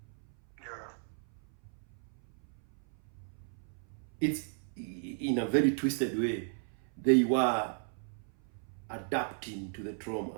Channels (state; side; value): silent; left; 55 dB below the other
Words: Yeah. It's in a very twisted way. They were adapting to the